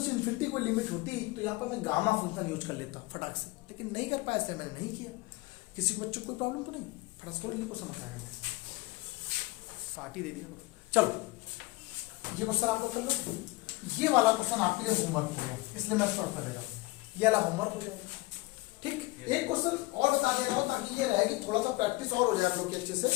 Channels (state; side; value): quieter; right; 22.2 dB